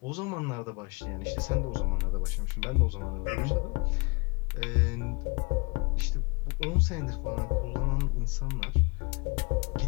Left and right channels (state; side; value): quieter; right; 29.0 dB